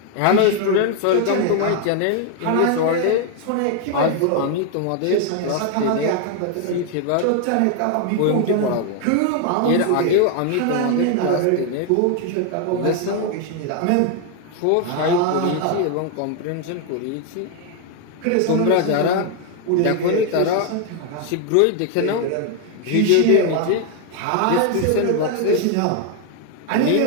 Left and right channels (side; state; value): both; different; correlation 0.00